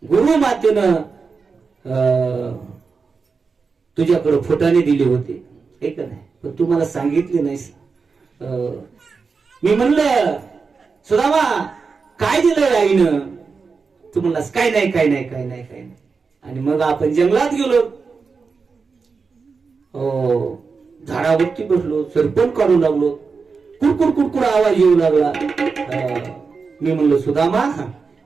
गुरु मातेनं तुझ्याकडे फुटाणे दिले होते हे का नाही. पण तू मला सांगितले नाहीस. मी म्हणलं सुदामा काय दिलं आईनं. तू म्हणलास काय नाही काय नाही काय नाही काय नाही. आणि मग आपण जंगलात गेलो. झाडावरती बसलो. सरपण काढू लागलो. कुडकुड कुडकुड आवाज येऊ लागला. मी म्हणलो सुदामा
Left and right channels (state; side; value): quieter; left; 4.9 dB